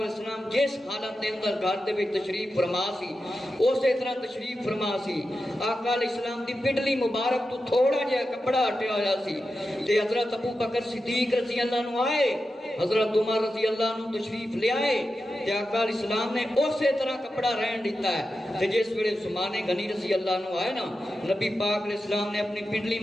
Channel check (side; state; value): both; normal; correlation 0.91